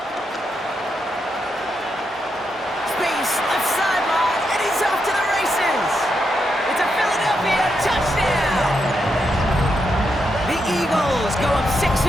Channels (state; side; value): normal; both; correlation 0.83